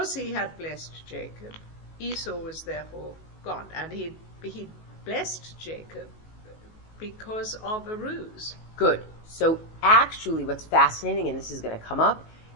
he had blessed Jacob. Esau was therefore gone, and he blessed Jacob because of a ruse. Good. So actually what's fascinating, and this is going to come up,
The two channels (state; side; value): late; right; 19 ms